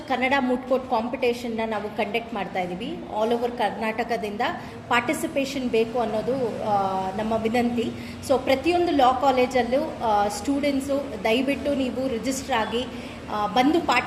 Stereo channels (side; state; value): both; identical; correlation 1.00